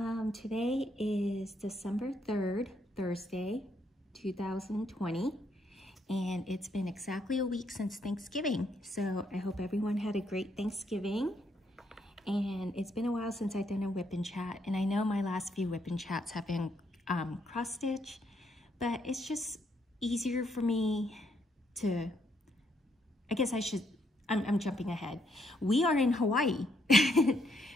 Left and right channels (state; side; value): normal; both; correlation 0.74